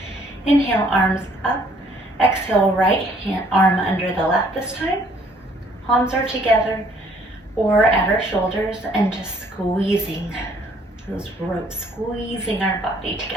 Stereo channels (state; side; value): normal; both; correlation 0.62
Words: Inhale, arms up. Exhale, right hand arm under the left this time. Palms are together or at our shoulders, and just squeezing those ropes, squeezing our body